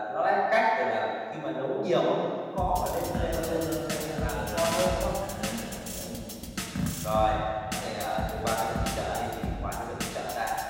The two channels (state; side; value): identical; both; correlation 1.00